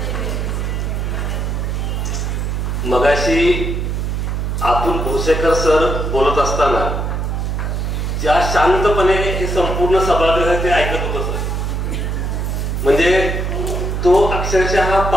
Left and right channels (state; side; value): noise; right; hum, 1 dB below the sound